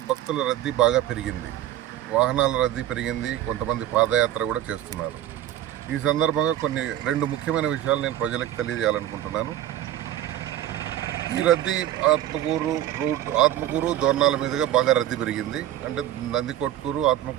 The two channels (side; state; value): left; quieter; 12.6 dB